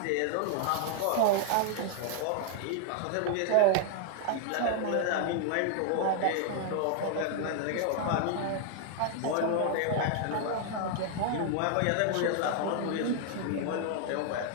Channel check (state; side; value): different; both; correlation 0.00